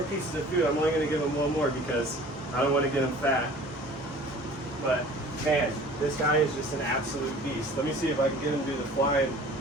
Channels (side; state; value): both; normal; correlation 0.46